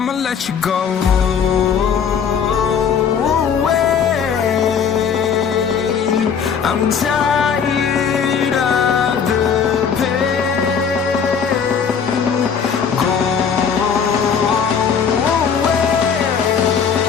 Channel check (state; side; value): quieter; right; 6.9 dB